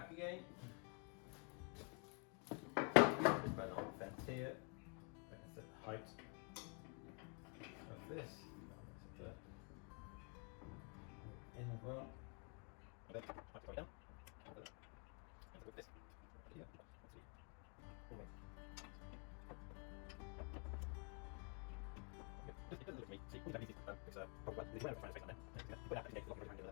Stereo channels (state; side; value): quieter; right; 37.0 dB